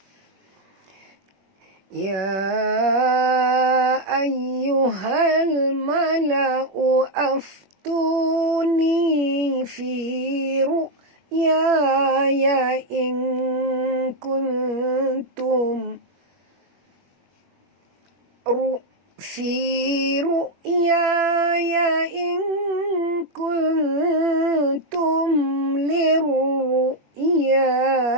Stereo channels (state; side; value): late; left; 21 ms